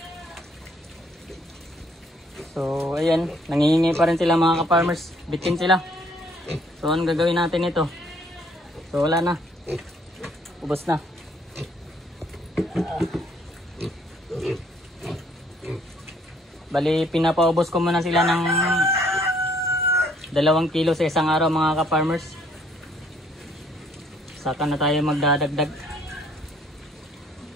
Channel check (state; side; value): normal; both; correlation 0.64